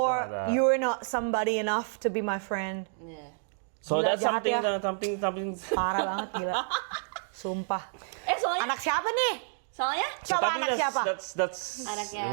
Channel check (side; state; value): left; silent; digital silence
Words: like that. you're not somebody enough to be my friend. Yeah. So Gila, that's jahat something. Parah banget gila. Sumpah. Soalnya, Anak siapa nih? So, Coba tapi anak siapa? That's Anaknya-